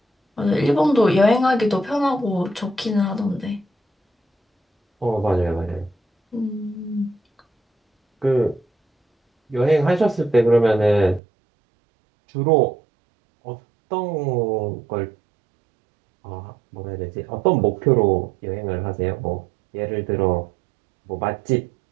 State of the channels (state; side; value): drops out; left; at 11.2 s